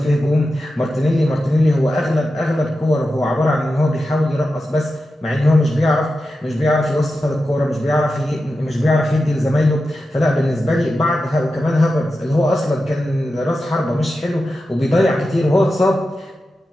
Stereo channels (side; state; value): both; normal; correlation 0.91